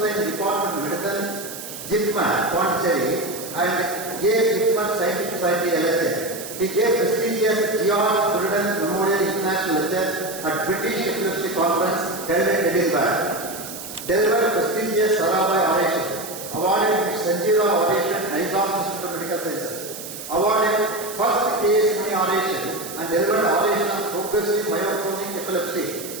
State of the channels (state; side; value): noise; right; hiss, 11 dB below the sound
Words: in department medicine JIPMER Pondicherry and JIPMER scientific society LSA. He gave prestigious George Burden Memorial International Lecture at British Epilepsy Conference held in Edinburgh. Delivered prestigious Sarabhai Oration. Awarded Sanjeeva Oration, Nizam Institute of Medical Sciences. Awarded first case money oration and delivered oration on progressive myoclonic epilepsy.